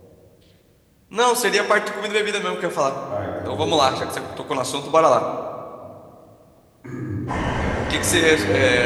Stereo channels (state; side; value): identical; both; correlation 1.00